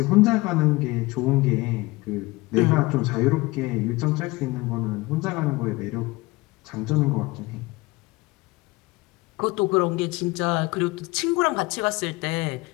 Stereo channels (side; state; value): right; quieter; 22.0 dB